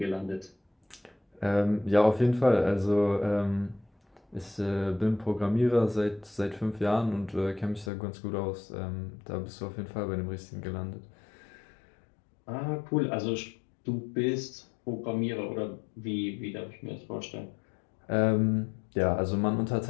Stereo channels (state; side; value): drops out; right; at 7.9 s